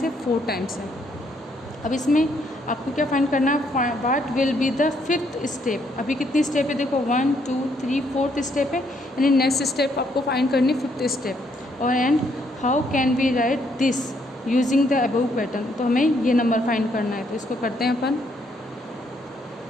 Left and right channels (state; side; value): normal; both; correlation 0.71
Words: है 4 टाइम्स है। अब इसमें आपको क्या फाइंड करना है, what will be the fifth step. अभी कितनी स्टेप है देखो 1 2 3 4th स्टेप है, यानी नेक्स्ट स्टेप आपको फाइंड करनी फिफ्थ स्टेप। और and how can we write this using the above pattern, तो हमें ये नंबर फाइंड करना है। तो इसको करते हैं अपन,